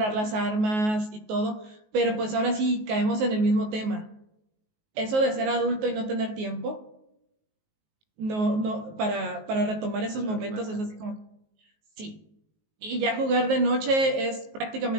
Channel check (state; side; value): late; left; 19 ms